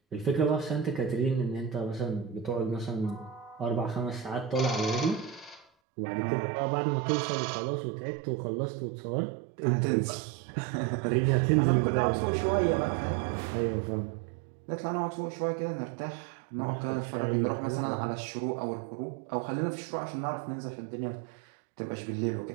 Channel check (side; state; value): left; drops out; at 5.7 s